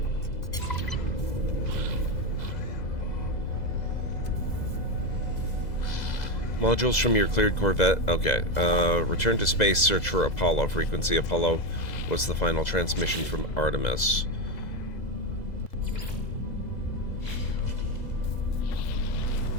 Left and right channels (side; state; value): right; late; 2.0 ms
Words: Modules from your cleared Corvette. Okay. Return to space, search for Apollo. Frequency Apollo was the final transmission from Artemis.